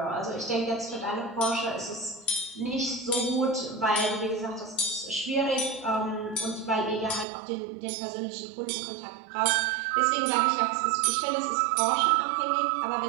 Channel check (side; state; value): left; drops out; at 7.2 s